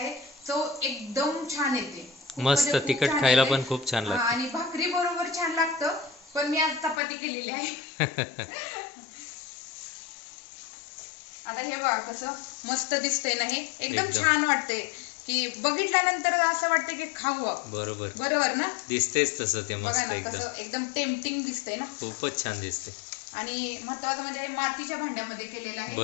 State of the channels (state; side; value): drops out; right; at 7.0 s